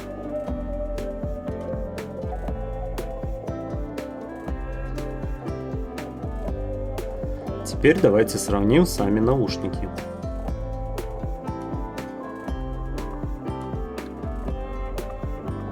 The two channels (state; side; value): identical; both; correlation 1.00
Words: Теперь давайте сравним сами наушники.